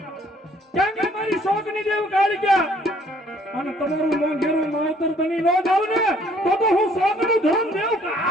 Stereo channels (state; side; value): normal; both; correlation 0.61